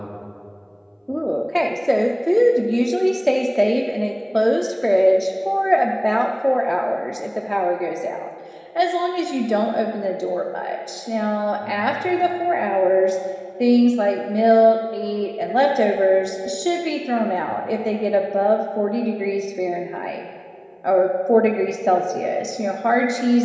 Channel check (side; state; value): both; identical; correlation 1.00